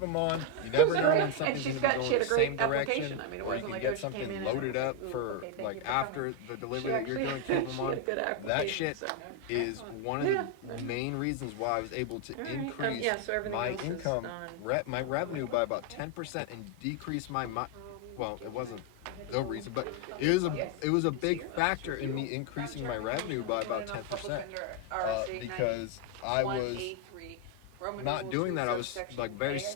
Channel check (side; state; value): both; different; correlation 0.01